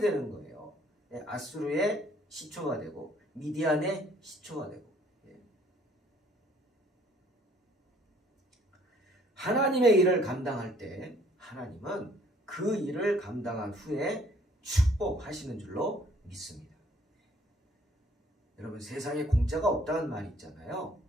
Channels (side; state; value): both; normal; correlation 0.60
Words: 거예요. 아수르의 시초가 되고 미디안의 시초가 되고. 하나님의 일을 감당할 때 하나님은 그 일을 감당한 후에 축복하시는 줄로 믿습니다. 여러분, 세상에 공짜가 없다는 말이 있잖아요.